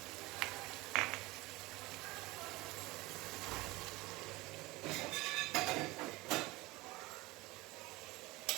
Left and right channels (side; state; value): left; quieter; 21.5 dB